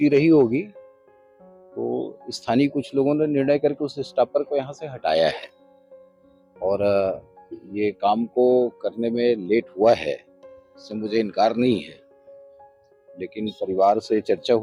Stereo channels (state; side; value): identical; both; correlation 1.00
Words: रही होगी तो स्थानीय कुछ लोगों ने निर्णय करके उस स्टॉपर को यहाँ से हटाया है और ये काम को करने में लेट हुआ है, इससे मुझे इनकार नहीं है, लेकिन परिवार से चर्चा